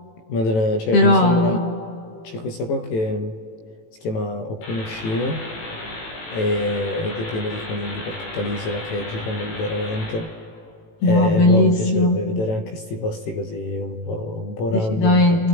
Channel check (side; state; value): right; late; 18 ms